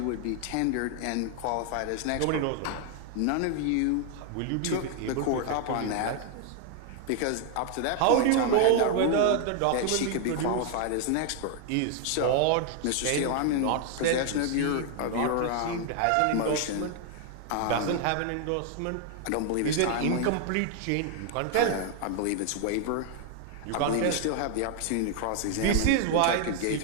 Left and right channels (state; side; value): different; both; correlation 0.00